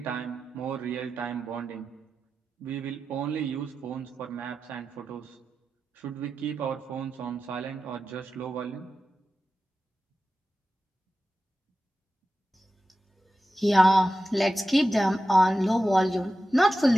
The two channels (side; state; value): both; normal; correlation 0.93